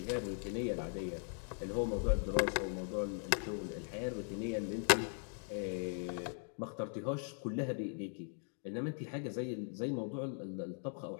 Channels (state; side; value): silent; right; 51 dB below the other